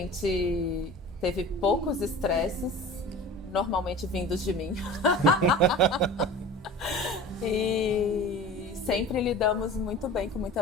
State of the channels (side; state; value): both; normal; correlation 0.38